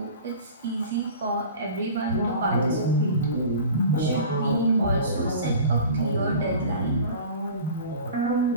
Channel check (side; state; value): both; inverted; correlation -0.40